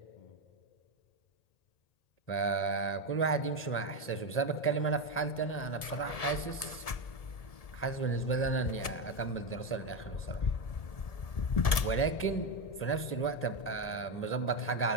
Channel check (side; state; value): right; late; 1.7 ms